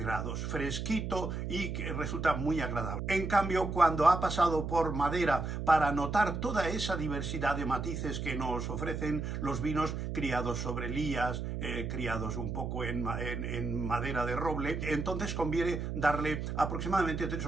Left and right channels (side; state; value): right; noise; hum, 4 dB below the sound